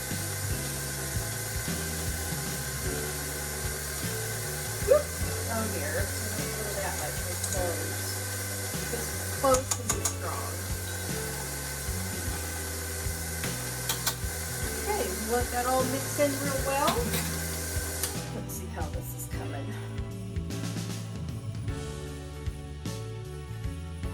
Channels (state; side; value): identical; both; correlation 1.00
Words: Whoop. Oh dear, I don't throw that much with cloves. Because cloves can be strong. Okay, let that all mix in real well. Let's see how this is coming.